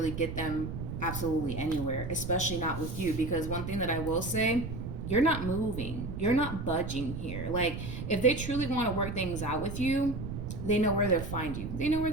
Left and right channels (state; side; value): noise; right; rumble, 6 dB below the sound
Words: get them absolutely anywhere, especially not with you. Because one thing that I will say, you're not moving. You're not budging here. Like, if they truly want to work things out with you, they know where to find you. They know